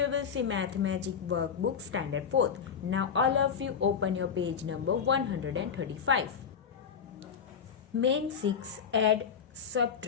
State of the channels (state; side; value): quieter; right; 7.0 dB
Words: we will see Mathematic Workbook Standard 4th. Now all of you open your page number 135. Main 6, add,